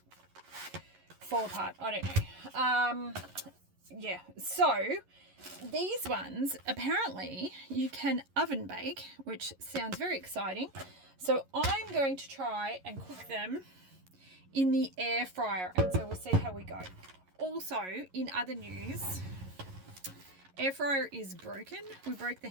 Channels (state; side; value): late; left; 11 ms